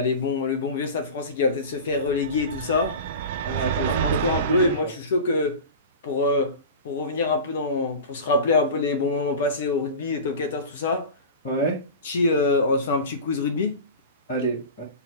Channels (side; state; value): both; inverted; correlation -0.31